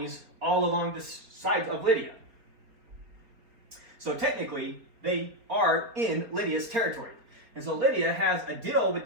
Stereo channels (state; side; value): late; left; 4.3 ms